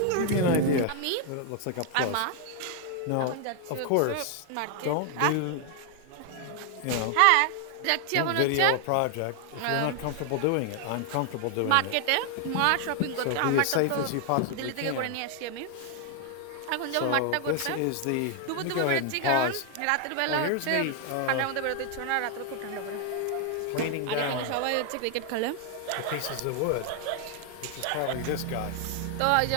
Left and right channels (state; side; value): different; both; correlation 0.00